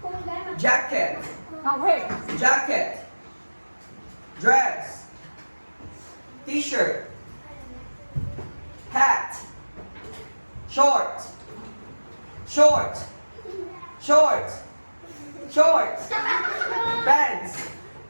Jacket. Jacket. Dress. T-shirt. Hat. Short. Short. Short. Short. Pants.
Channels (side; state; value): both; inverted; correlation -1.00